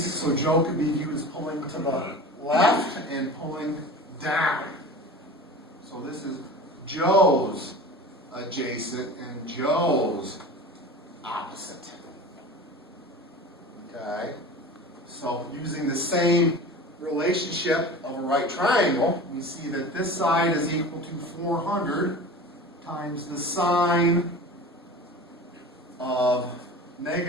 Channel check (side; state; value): both; normal; correlation 0.35